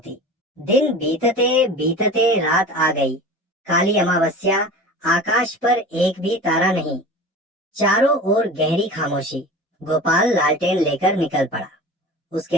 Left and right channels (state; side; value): normal; both; correlation 0.35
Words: दिन बीतते बीतते रात आ गई। काली अमावस्या, आकाश पर एक भी तारा नहीं, चारों ओर गहरी खामोशी। गोपाल लालटेन लेकर निकल पड़ा।